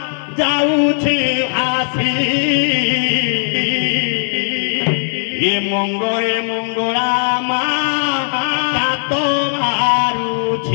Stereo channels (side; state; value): right; silent; 56 dB below the other